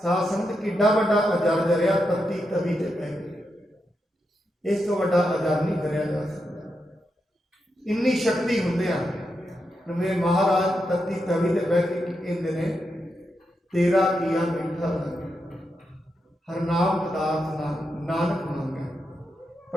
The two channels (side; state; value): both; normal; correlation 0.85